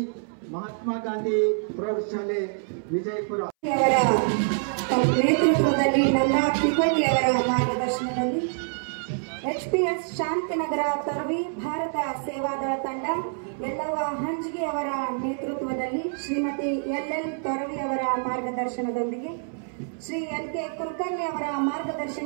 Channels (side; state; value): left; silent; 61 dB below the other